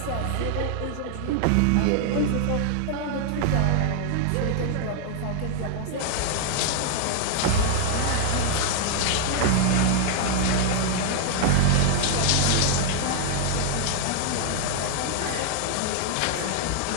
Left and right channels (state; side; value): different; both; correlation 0.00